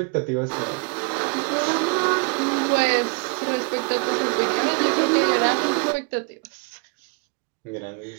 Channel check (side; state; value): left; quieter; 33.2 dB